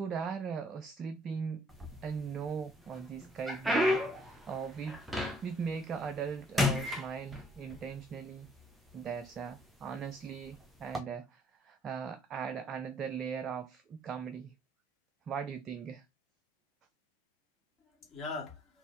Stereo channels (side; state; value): both; normal; correlation 0.65